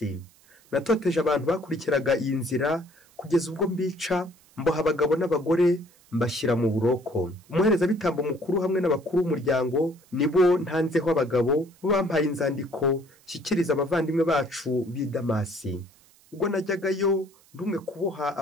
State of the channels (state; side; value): noise; right; hiss, 29 dB below the sound